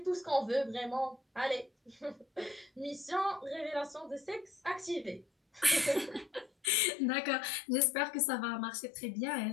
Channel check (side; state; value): right; drops out; at 6.7 s